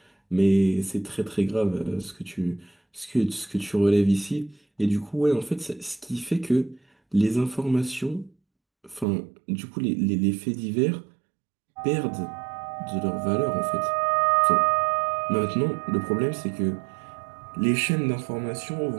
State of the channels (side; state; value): left; drops out; at 9.1 s